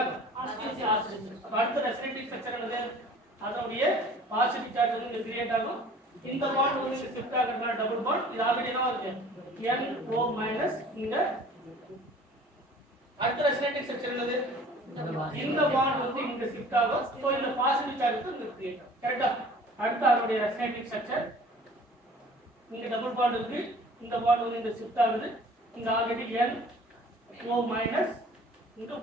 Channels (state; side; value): normal; both; correlation 0.48